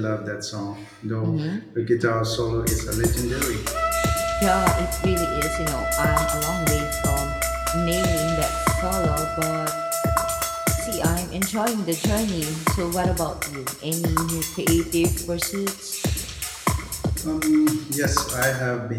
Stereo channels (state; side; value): identical; both; correlation 1.00